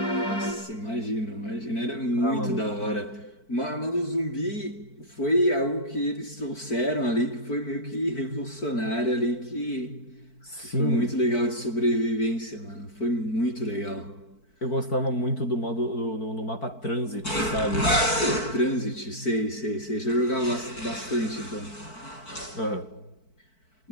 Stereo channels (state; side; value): late; right; 4.5 ms